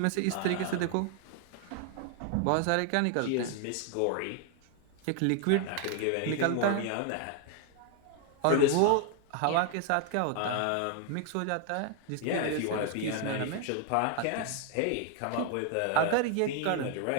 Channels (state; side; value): different; both; correlation 0.00